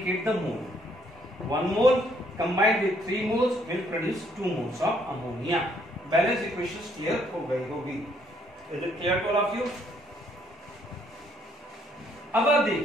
the mole. 1 mole combined with 3 moles will produce 2 moles of ammonia. Balance equation clear हो गई होगी। Is it clear to all of you? अब आप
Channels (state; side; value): normal; both; correlation 0.68